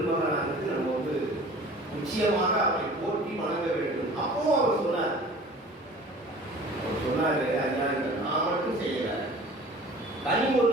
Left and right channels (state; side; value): normal; both; correlation 0.45